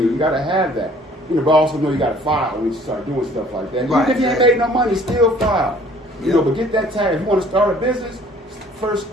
You got to have that. But also know you got to file when you start doing stuff like that. Right. Even if you ain't made no money, still file. You know, but get that tax. If you want to start a business, first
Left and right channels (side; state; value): both; normal; correlation 0.55